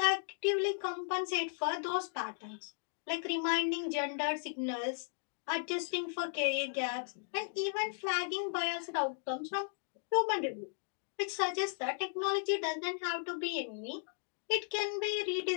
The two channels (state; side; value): silent; right; digital silence